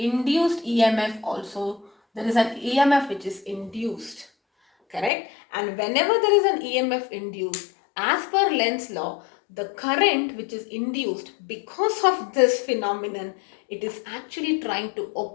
EMF also, there is an EMF which is induced, correct? And whenever there is an EMF induced, as per Lenz's law, the current which is induced because of this phenomenon, it is actually trying to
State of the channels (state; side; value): drops out; right; at 5.1 s